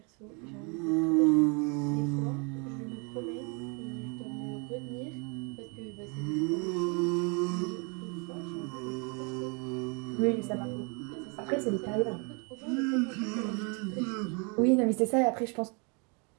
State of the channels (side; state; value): left; quieter; 34.0 dB